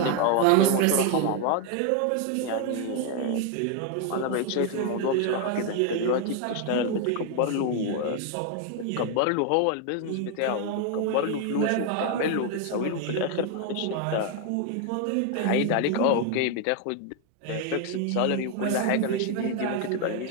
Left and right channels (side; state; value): both; different; correlation 0.01